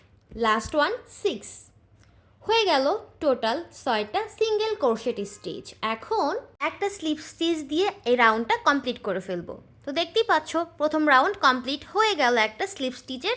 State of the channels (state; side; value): identical; both; correlation 1.00